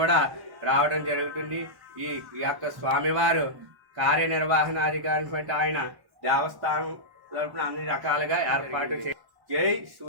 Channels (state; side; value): late; left; 1.1 ms